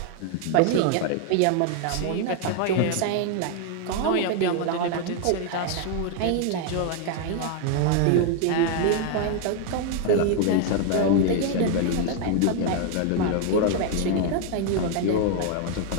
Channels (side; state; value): both; different; correlation 0.00